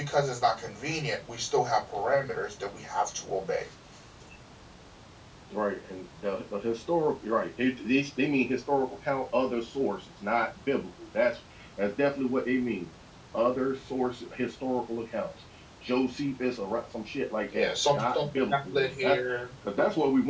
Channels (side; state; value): both; identical; correlation 1.00